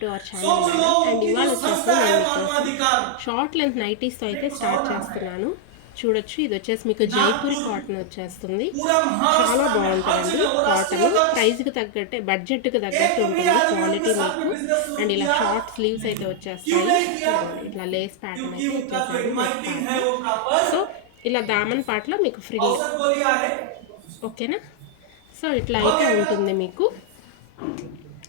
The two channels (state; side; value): different; both; correlation 0.00